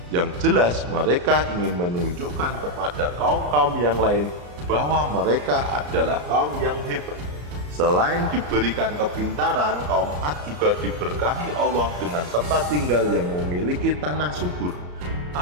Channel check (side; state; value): left; late; 34 ms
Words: Yang jelas mereka ingin menunjukkan kepada kaum-kaum yang lain bahwa mereka adalah kaum yang hebat. Selain diberikan kepintaran, kaum Ad juga diberkahi Allah dengan tempat tinggal yang memiliki tanah subur.